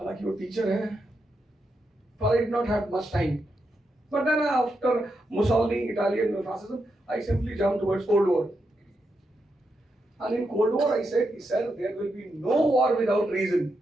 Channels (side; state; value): both; normal; correlation 0.84